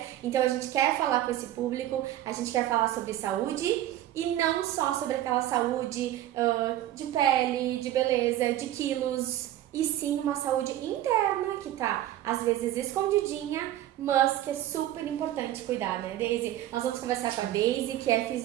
então a gente quer falar com esse público, a gente quer falar sobre saúde e não só sobre aquela saúde de pele, de beleza, de quilos, e sim uma saúde interna que tá às vezes escondidinha, mas que é super importante cuidar, né, Daisy? Nós vamos conversar com a Daisy, que é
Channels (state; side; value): quieter; left; 13.3 dB